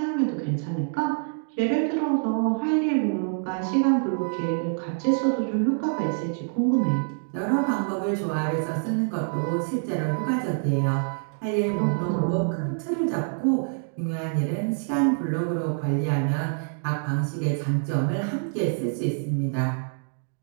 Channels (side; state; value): left; silent; digital silence